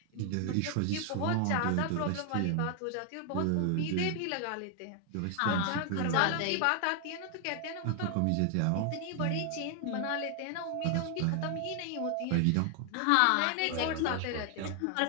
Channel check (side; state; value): both; different; correlation 0.00